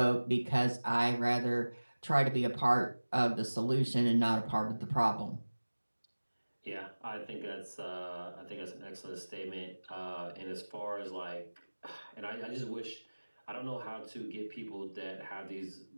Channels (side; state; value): both; inverted; correlation -1.00